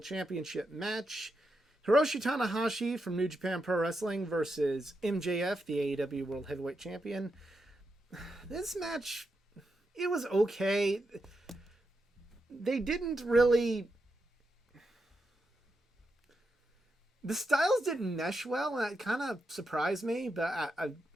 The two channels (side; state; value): both; normal; correlation 0.85